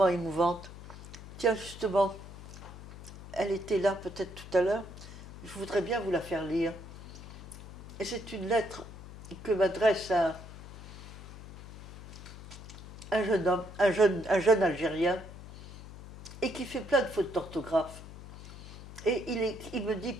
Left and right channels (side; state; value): left; noise; hum, 13 dB below the sound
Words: émouvantes. Tiens, justement, elle était là peut-être tout à l'heure, je voudrais bien vous la faire lire. Et c'est une lettre que m'adresse un jeune homme, un jeune Algérien, et qui fait plein de fautes d'orthographe. Et il me dit,